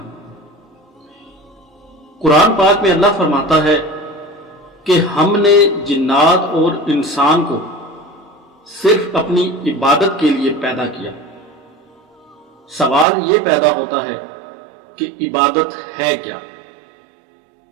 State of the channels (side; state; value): left; drops out; at 13.1 s